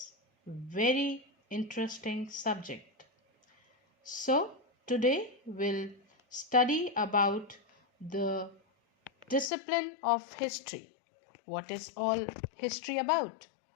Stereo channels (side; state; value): right; drops out; at 9.5 s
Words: very interesting subject. So today we'll study about the discipline of history. What is all history about?